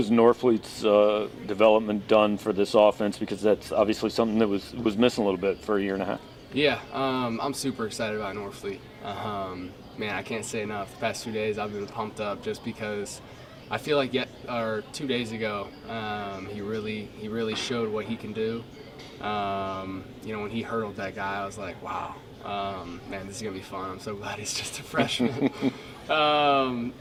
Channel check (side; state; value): both; identical; correlation 1.00